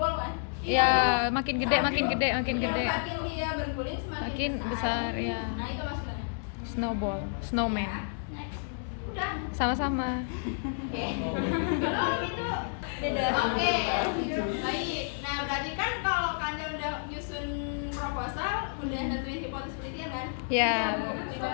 kan? Ya, makin gede, makin gede, makin gede. Makin dia berguling semakin Makin besar, ya. Nah itu maksudnya. Snowball, snowman. Next. Udah. Sama-sama. Oke. Belum itu. Beda. Oke. Baik. Nah, berarti kan kalau kalian udah nyusun proposal, udah nentuin hipotesis penelitian kan? Ya.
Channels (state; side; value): silent; right; digital silence